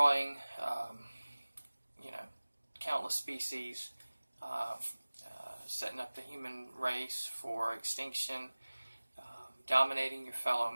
countless species, setting up the human race for extinction, dominating your fellow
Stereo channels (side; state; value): both; inverted; correlation -1.00